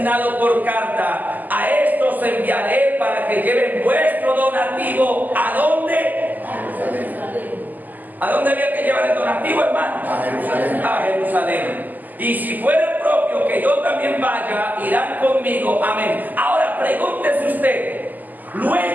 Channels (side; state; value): left; late; 0.084 ms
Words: por carta, a estos enviaré para que lleven vuestro donativo. ¿A dónde? ¿A dónde había que llevar el donativo, hermano? A Jerusalén. A Jerusalén. Y si fuera propio que yo también vaya, irán conmigo. Amén. Ahora pregúntese usted.